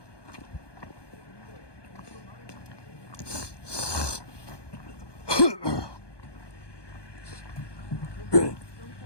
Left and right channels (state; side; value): late; right; 1.2 ms